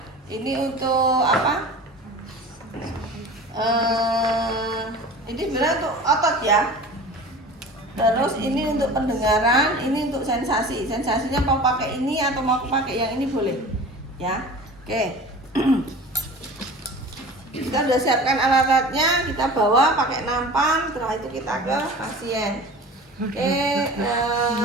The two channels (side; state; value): both; normal; correlation 0.38